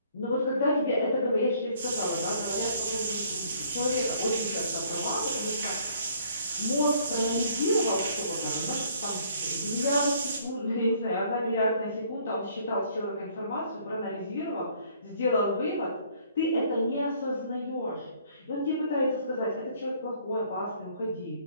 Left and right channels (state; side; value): inverted; both; correlation -0.60